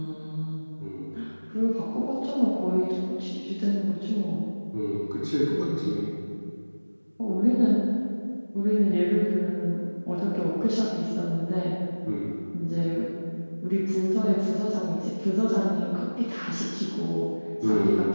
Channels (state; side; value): inverted; both; correlation -1.00